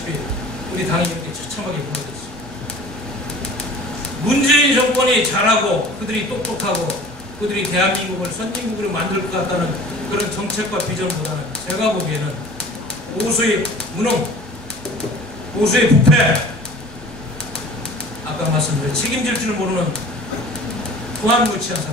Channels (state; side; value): normal; both; correlation 0.45